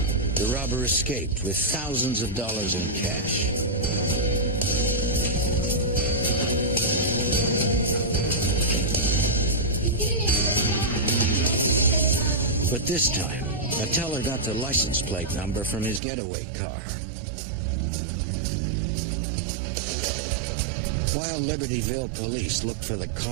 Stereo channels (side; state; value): left; drops out; at 16.0 s